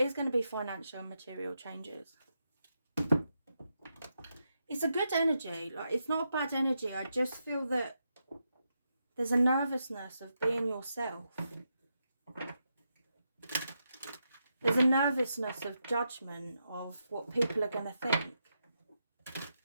going to be financial and material changes. It's a good energy. Like, it's not a bad energy. I just feel that there's a nervousness of being yourself. There's a nervousness of judgment of what people are going to think.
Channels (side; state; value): both; inverted; correlation -0.84